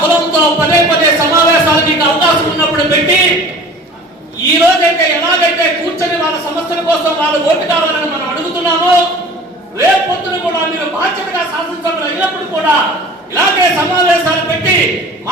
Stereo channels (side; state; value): both; normal; correlation 0.44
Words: కులంతో పదే పదే సమావేశాలు మీకు అవకాశం ఉన్నప్పుడు పెట్టి ఈ రోజైతే ఎలాగైతే కూర్చొని వాళ్ళ సమస్యల కోసం వాళ్ళ ఓటు కావాలని మనం అడుగుతున్నామో రేపు పొద్దున కూడా మీరు బాధ్యతగా శాసనసభ్యులు అయినప్పుడు కూడా ఇలాగే సమావేశాలు పెట్టి